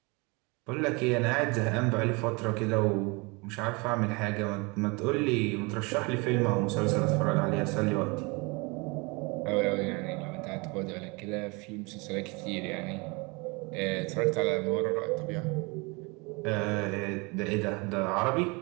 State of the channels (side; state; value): left; quieter; 28.0 dB